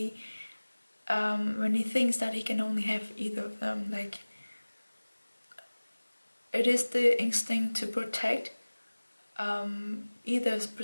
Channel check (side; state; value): both; inverted; correlation -1.00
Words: thinks that he can only have either of them. Like, it is the instinct to protect, either